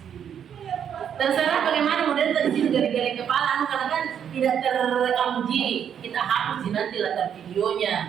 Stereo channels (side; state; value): left; quieter; 8.5 dB